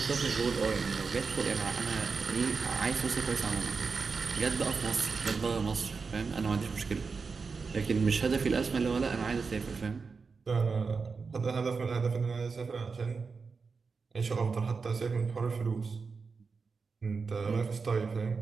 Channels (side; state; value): left; quieter; 4.9 dB